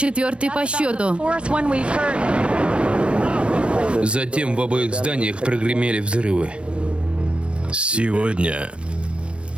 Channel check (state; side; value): late; left; 0.059 ms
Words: по счету. Затем в обоих зданиях прогремели взрывы. Сегодня